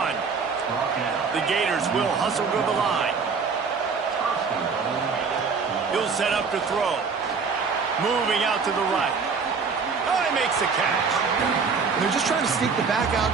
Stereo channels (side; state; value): left; quieter; 5.3 dB